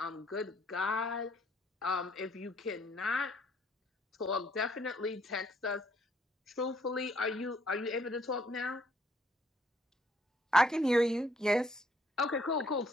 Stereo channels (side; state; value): both; normal; correlation 0.67